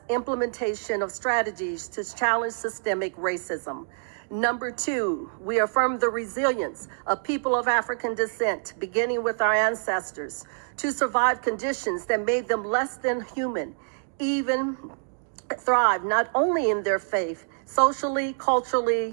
implementation of strategies to challenge systemic racism. Number 2, we affirm the resilience of people of African descent, beginning with our ancestors, to survive conditions that made them less than human, even thrive not only in their faith, socially,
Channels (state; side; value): silent; left; digital silence